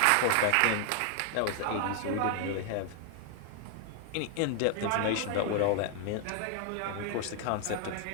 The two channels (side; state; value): both; different; correlation 0.00